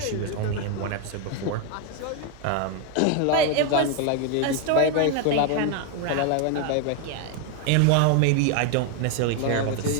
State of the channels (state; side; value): different; both; correlation 0.01